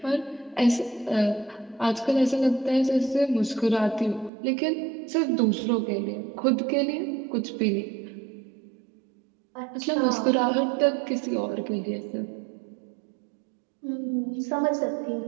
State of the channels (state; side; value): drops out; left; at 4.3 s